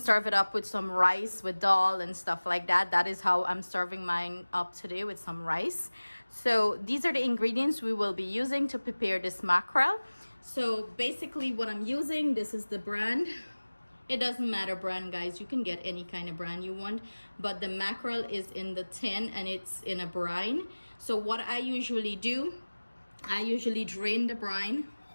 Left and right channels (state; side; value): inverted; both; correlation -1.00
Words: it up with some rice with dal and stuff like that. That is how I'm serving mine up today, with some rice. So these are the ingredients we will be using to prepare this mackerel. So basically what I'm using, this is the brand. It doesn't matter brand guys, you can get any kind of brand you want, but the mackerel is in the tin and it's in a brine. So what I usually do, I usually drain the brine.